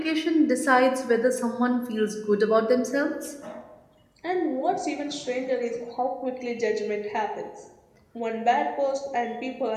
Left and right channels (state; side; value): identical; both; correlation 1.00